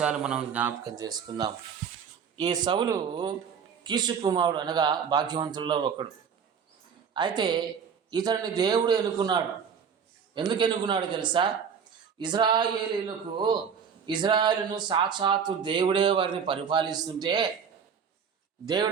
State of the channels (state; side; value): quieter; left; 6.8 dB